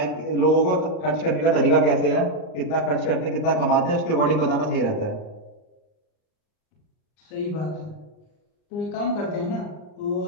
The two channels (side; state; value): right; late; 39 ms